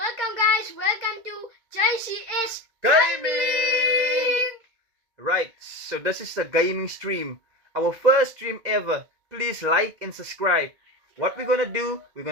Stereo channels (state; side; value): late; left; 2.0 ms